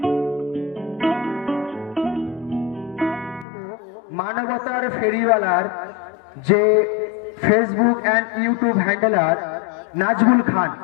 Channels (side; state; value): right; drops out; at 3.5 s